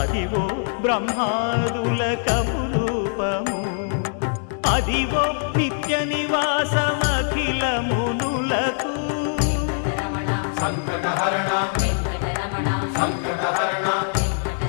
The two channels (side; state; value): right; silent; digital silence